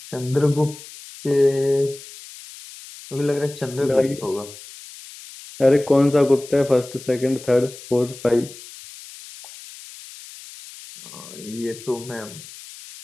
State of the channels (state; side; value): noise; left; hiss, 17 dB below the sound